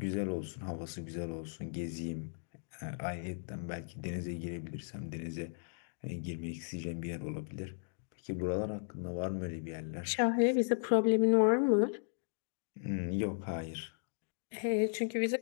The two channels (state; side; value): silent; right; digital silence